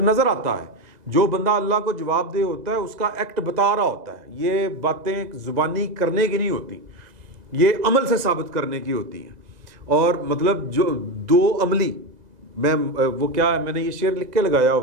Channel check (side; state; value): left; late; 2.0 ms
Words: نظر آتا ہے. جو بندہ اللہ کو جواب دہ ہوتا ہے اس کا ایکٹ بتا رہا ہوتا ہے. یہ باتیں زبانی کرنے کی نہیں ہوتی، یہ عمل سے ثابت کرنے کی ہوتی ہیں. اور مطلب جو دو عملی، میں نے یہ شعر لکھ کے لگایا